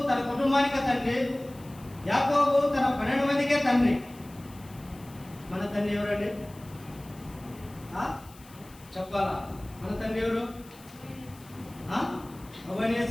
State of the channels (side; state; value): left; noise; hiss, 23 dB below the sound